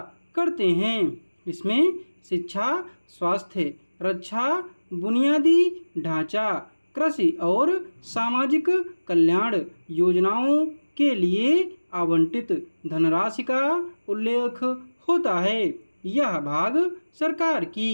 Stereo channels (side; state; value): both; inverted; correlation -1.00